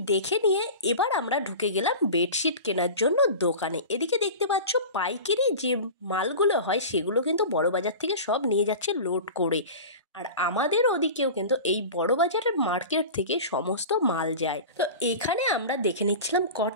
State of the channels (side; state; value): both; inverted; correlation -0.33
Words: দেখে নিয়ে এবার আমরা ঢুকে গেলাম বেডশিট কেনার জন্য দোকানে। এদিকে দেখতে পাচ্ছ পাইকারি যে মালগুলো হয় সেগুলো কিন্তু বড় বাজার থেকে সব নিয়ে যাচ্ছে লোড করে। আর আমাদের ওদিকেও কিন্তু এই বড় বাজারের মার্কেট থেকে সমস্ত মাল যায়। তো এখানে আমরা দেখে নিচ্ছিলাম